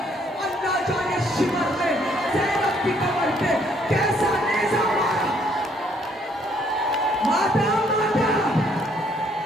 اللہ جانے شمر میں زینب کی کمر پہ کیسا نیزہ مارا. ماتا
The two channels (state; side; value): normal; both; correlation 0.66